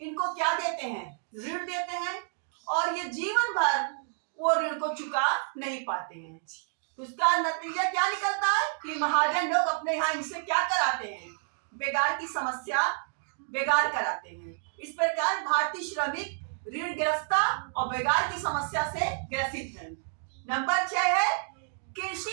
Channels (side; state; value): left; silent; digital silence